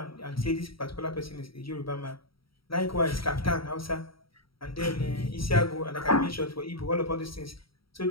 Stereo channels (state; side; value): late; right; 0.75 ms